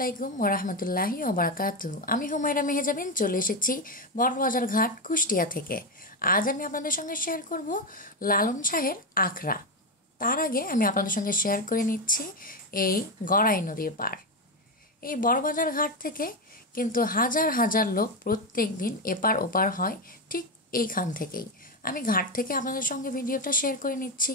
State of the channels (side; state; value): both; normal; correlation 0.10